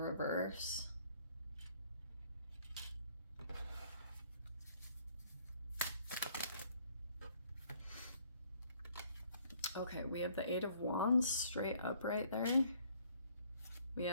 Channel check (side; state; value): both; inverted; correlation -0.62